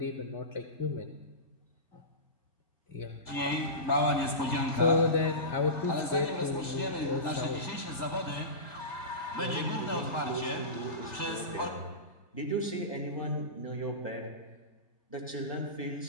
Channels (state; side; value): late; right; 1.8 ms